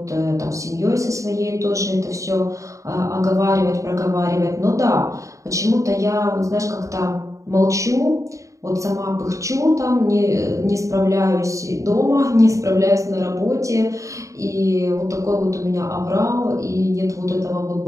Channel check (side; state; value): left; late; 0.15 ms